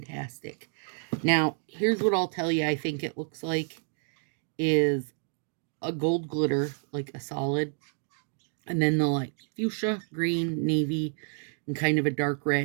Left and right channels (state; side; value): silent; left; 58 dB below the other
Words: Now, here's what I'll tell you I think it looks like is a gold glitter, like a solid, and then the like fuchsia, green, navy, and kind of a dark